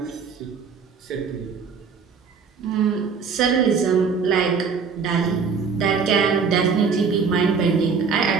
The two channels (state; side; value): quieter; left; 5.5 dB